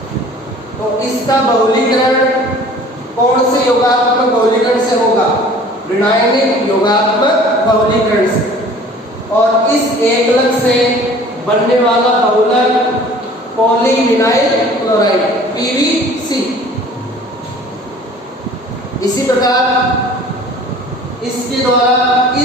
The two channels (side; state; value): both; normal; correlation 0.48